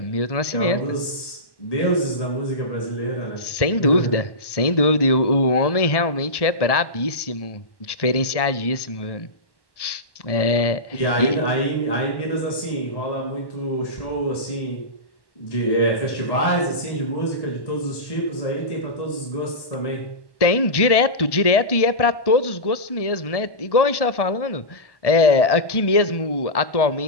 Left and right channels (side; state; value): right; late; 1.1 ms